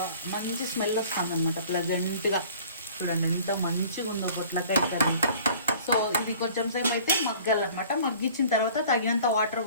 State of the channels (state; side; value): inverted; both; correlation -0.48